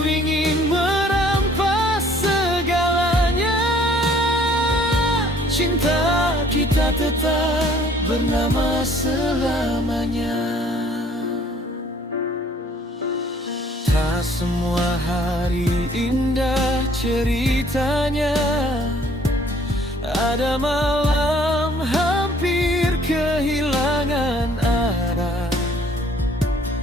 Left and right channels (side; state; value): both; normal; correlation 0.58